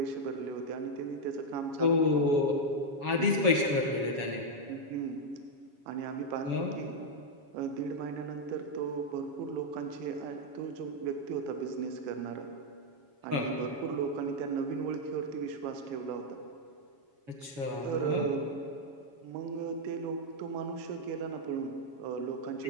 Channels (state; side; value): late; left; 7.2 ms